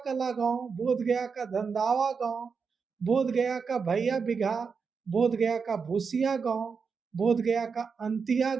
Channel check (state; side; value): quieter; left; 5.5 dB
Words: गांव, बोध गया का धंधावा गांव, बोध गया का भैया बिघा, बोध गया का भूसिया गांव, बोध गया का अंतिया